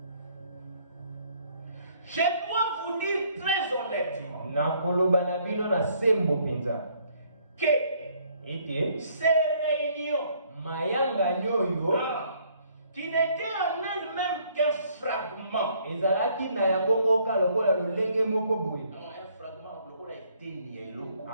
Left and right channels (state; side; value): inverted; both; correlation -0.65